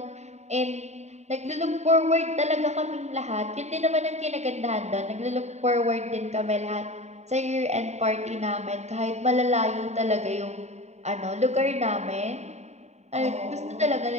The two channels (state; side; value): late; left; 0.32 ms